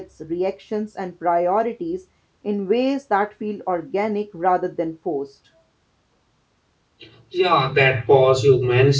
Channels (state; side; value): identical; both; correlation 1.00